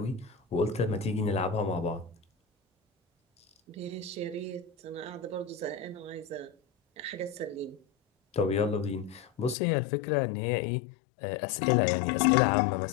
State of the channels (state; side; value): drops out; right; at 9.6 s